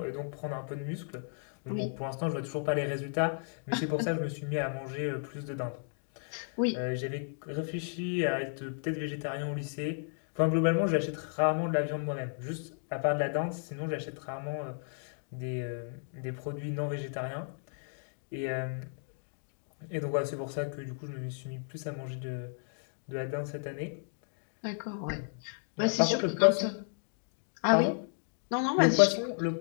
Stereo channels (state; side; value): silent; right; 55 dB below the other